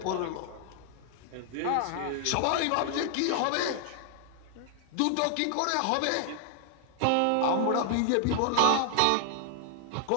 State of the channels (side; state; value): both; different; correlation 0.00